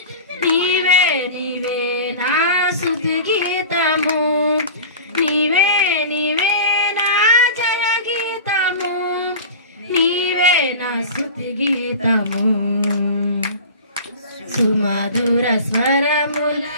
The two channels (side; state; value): both; inverted; correlation -0.35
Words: నీవే నీవే నా స్తుతి గీతము నీవే నీవే నా జయ గీతము నీవే నా స్తుతి గీతము సుమధుర స్వరముల